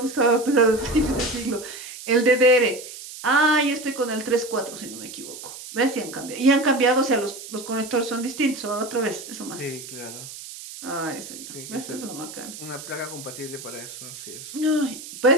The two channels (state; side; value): noise; right; hiss, 13 dB below the sound